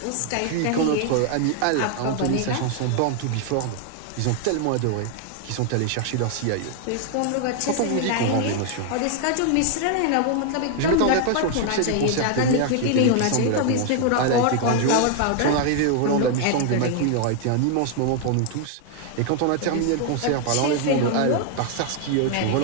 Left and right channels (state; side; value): different; both; correlation 0.00